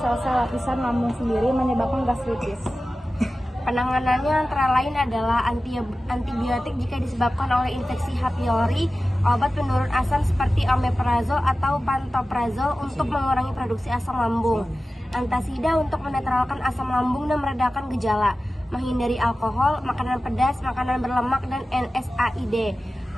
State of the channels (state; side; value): normal; both; correlation 0.95